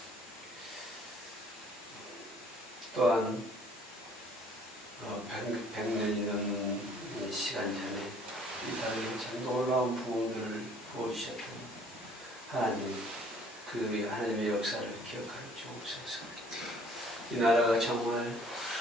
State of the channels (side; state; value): both; normal; correlation 0.57